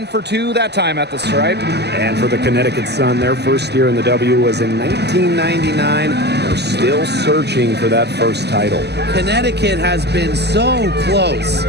for 2 that time at the stripe. And for the Connecticut Sun, their first year in the W was in 1999. They're still searching for that first title. Connecticut has been so close,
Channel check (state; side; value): late; left; 0.49 ms